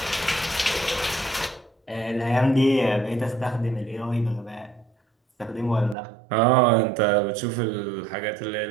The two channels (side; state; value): left; drops out; at 6.0 s